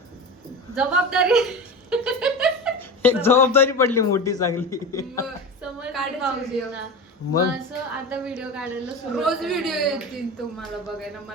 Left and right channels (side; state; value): both; normal; correlation 0.27